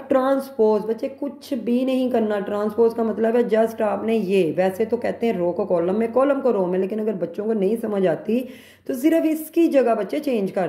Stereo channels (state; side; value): identical; both; correlation 1.00